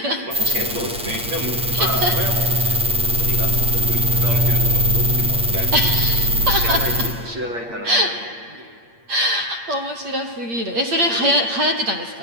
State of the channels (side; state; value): left; late; 8.6 ms